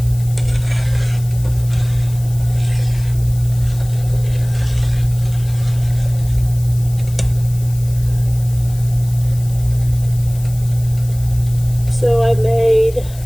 So I made,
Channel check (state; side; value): noise; left; hiss, 19 dB below the sound